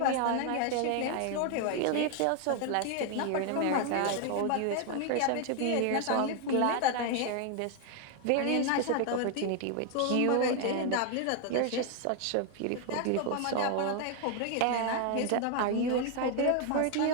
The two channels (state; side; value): different; both; correlation 0.01